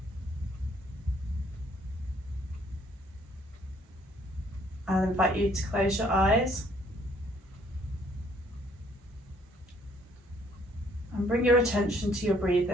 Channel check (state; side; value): normal; both; correlation 0.63